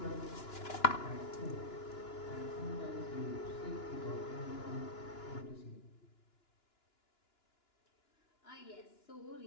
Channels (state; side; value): late; right; 2.9 ms